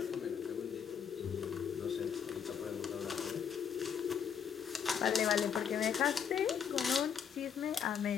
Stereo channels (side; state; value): right; quieter; 7.6 dB